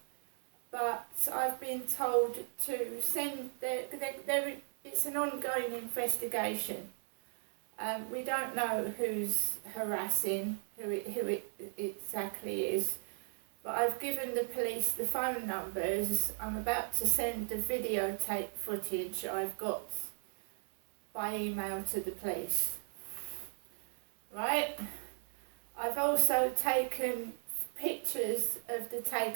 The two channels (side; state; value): left; silent; 53 dB below the other